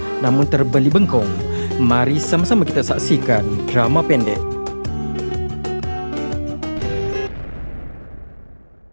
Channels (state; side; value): inverted; both; correlation -1.00